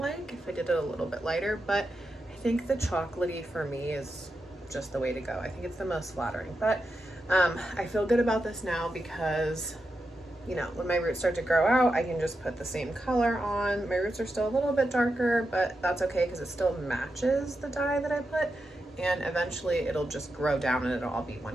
if I did it a little bit lighter, but I think the chocolatey for me is just the way to go. I think it's the most flattering, but I feel good about this now because, you know, when my roots start to grow out, I can just put the same color on. My roots are still a little bit darker, but that's okay because it still matches the dye that I put, and eventually it'll just grow down and it'll all be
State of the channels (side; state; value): both; normal; correlation 0.88